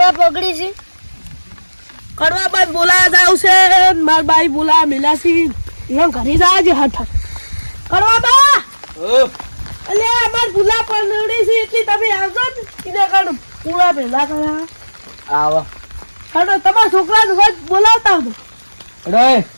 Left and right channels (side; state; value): both; inverted; correlation -1.00